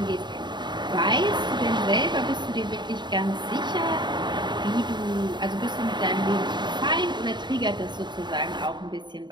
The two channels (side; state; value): left; late; 0.22 ms